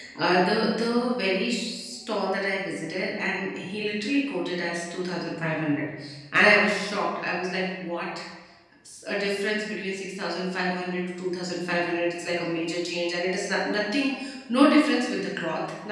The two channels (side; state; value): both; identical; correlation 1.00